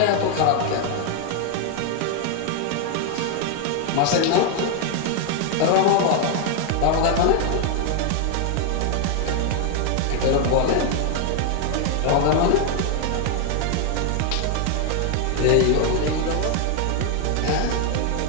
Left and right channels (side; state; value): both; different; correlation 0.01